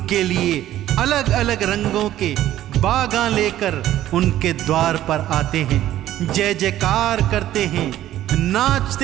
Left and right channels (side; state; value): left; quieter; 13.2 dB